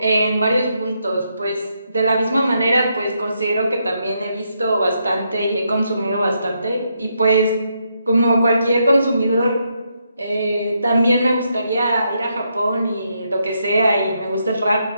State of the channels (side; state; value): both; inverted; correlation -0.79